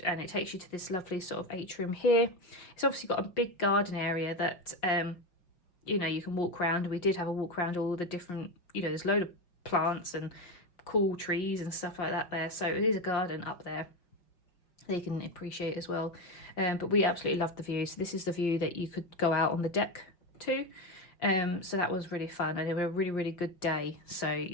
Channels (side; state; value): right; late; 5.5 ms